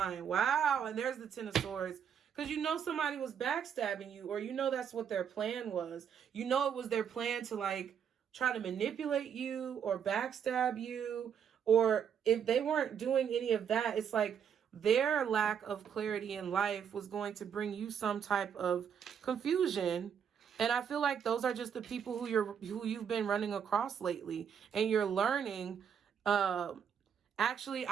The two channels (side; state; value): left; quieter; 7.9 dB